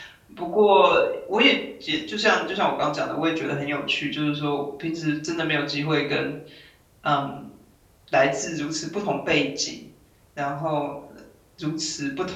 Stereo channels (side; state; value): both; identical; correlation 1.00